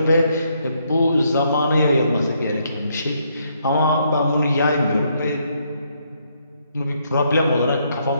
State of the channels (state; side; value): inverted; both; correlation -0.73